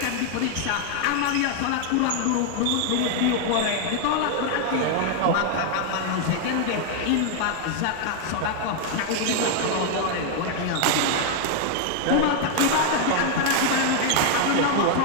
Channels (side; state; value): both; different; correlation 0.00